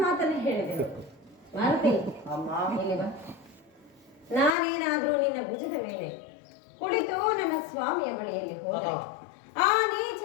ಮಾತನ್ನೇ ಹೇಳಿದೆನು. ಮಾರುತಿ, ಅಮ್ಮ, ಇಲ್ಲಿ ಬಾ. ನಾನೇನಾದ್ರೂ ನಿನ್ನ ಭುಜದ ಮೇಲೆ ಕುಳಿತು ನನ್ನ ಸ್ವಾಮಿಯ ಬಳಿಯಲ್ಲಿ ಹೋದರೆ ಆ ನೀಚ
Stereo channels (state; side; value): drops out; right; at 4.5 s